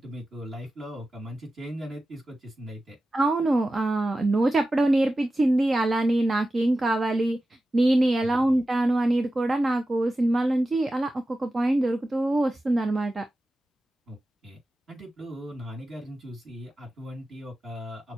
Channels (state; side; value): normal; both; correlation 0.94